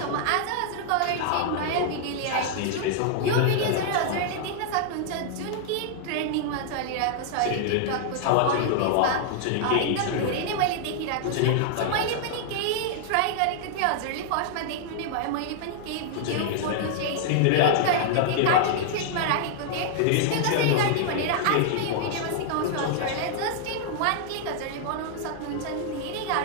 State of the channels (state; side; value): different; both; correlation -0.01